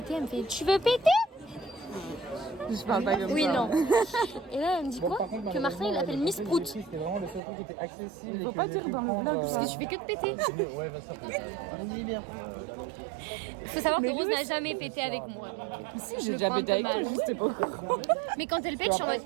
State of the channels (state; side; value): drops out; left; at 7.4 s